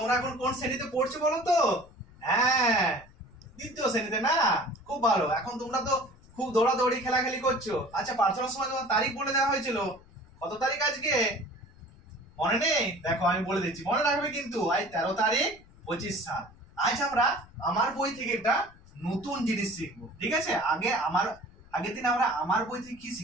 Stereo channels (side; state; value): left; noise; rumble, 24 dB below the sound